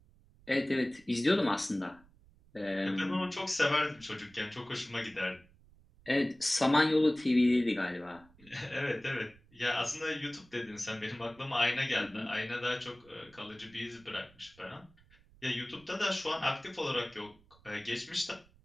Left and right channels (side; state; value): right; noise; rumble, 27 dB below the sound